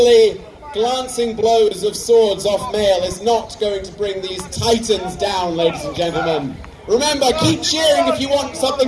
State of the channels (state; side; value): identical; both; correlation 1.00